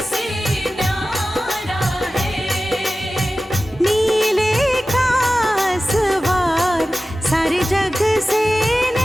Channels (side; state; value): both; normal; correlation 0.95